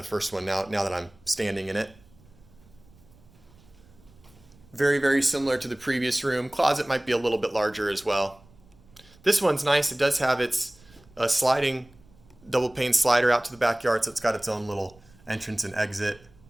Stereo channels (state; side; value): noise; right; rumble, 27 dB below the sound